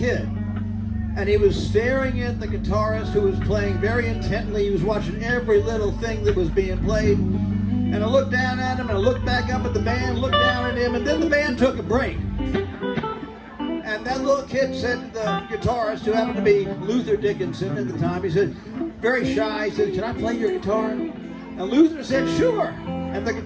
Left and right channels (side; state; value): both; identical; correlation 1.00